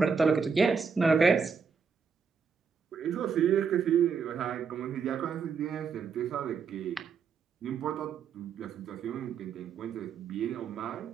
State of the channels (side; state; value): left; quieter; 5.9 dB